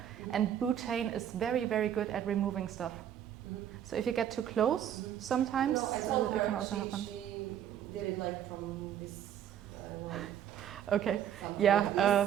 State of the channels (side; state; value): left; quieter; 10.0 dB